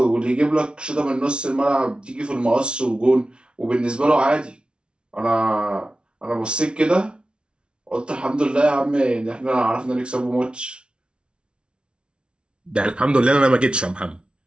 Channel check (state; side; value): late; left; 0.057 ms